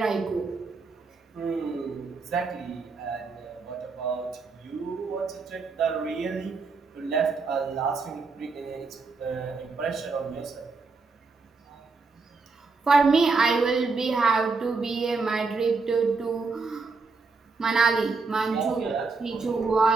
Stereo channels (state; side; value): quieter; left; 4.3 dB